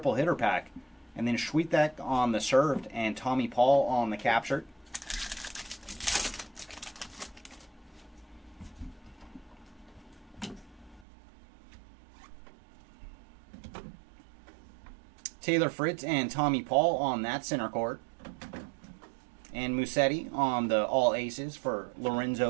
hitter pack. And then Schwitek on the served and Tommy Paul on the captured. Taylor Fritz and Tommy Paul on that center court. And Musetti on the all aces for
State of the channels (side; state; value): left; drops out; at 11.1 s